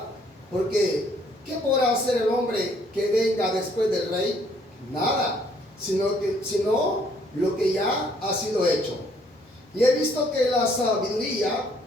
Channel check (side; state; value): both; normal; correlation 0.65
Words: porque ¿qué podrá hacer el hombre que venga después del rey? Nada, sino lo que ya ha sido hecho. Y he visto que la sabiduría